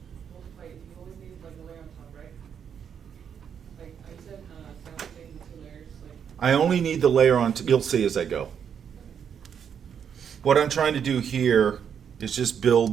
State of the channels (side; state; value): left; quieter; 7.8 dB